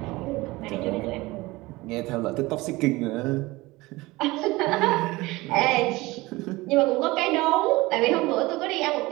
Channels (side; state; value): left; quieter; 21.0 dB